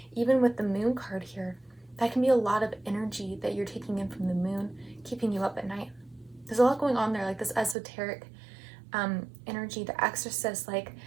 Even with the moon card here, that can be a lot of energy that you're taking in from the moon, keeping you up at night. There's a lot going on there, like this esoteric energy, the Exorcist, like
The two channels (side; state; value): left; drops out; at 7.8 s